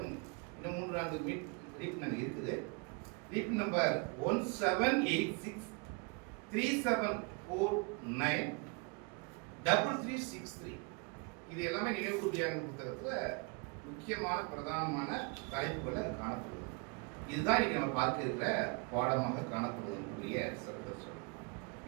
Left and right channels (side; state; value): left; quieter; 32.0 dB